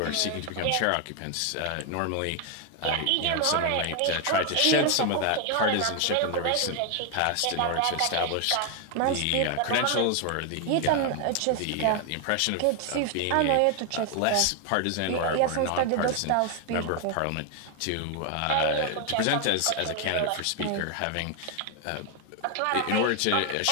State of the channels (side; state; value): both; different; correlation 0.01